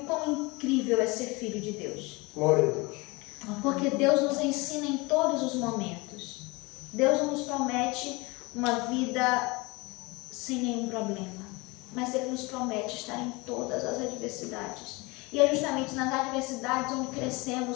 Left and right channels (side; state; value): right; quieter; 25.1 dB